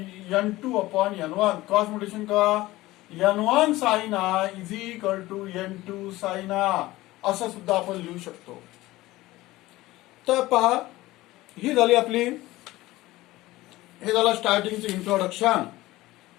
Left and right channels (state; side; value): quieter; right; 18.1 dB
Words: N2 upon N1 cross mutation करा. N1 sine I is equal to N2 sine I, असं सुद्धा आपण लिहू शकतो. तर पहा, ही झाली आपली, हे झालं स्टार्टिंगचं इंट्रोडक्शन.